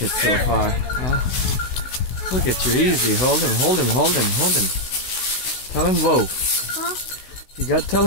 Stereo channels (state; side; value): late; right; 16 ms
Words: it so far? Huh? Look at you, easy. Hold him, hold him, hold him, hold him. Tell him whoa. Huh? You got to tell